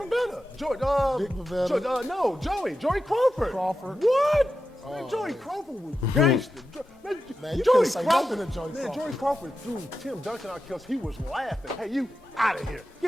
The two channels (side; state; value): both; normal; correlation 0.90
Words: Dick Bavetta. Joey Crawford. What? Man, Joey Crawford was gangster. Man, you couldn't say nothing to Joey Crawford. Man, Joey Crawford threw Tim Duncan out because he was laughing. Hey, you out of here.